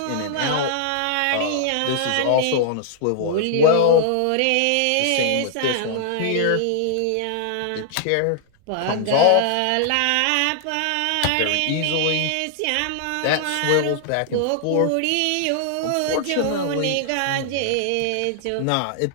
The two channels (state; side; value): different; both; correlation -0.01